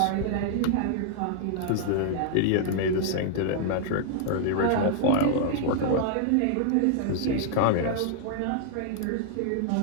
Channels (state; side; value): different; both; correlation 0.00